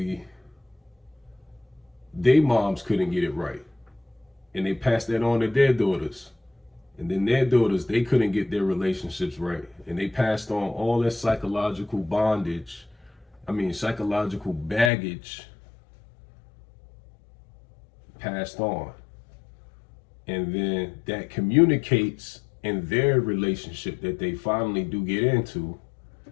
they moms couldn't get it right. And they passed that on to their daughters. And then their daughters, they couldn't get their relationships right. And they passed on all that psychological baggage passed on. And then that communicates in their relationship that they finally do get into.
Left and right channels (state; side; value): drops out; right; at 14.9 s